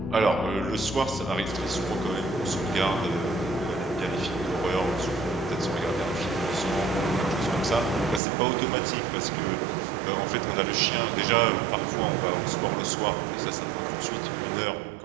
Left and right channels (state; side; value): drops out; left; at 8.2 s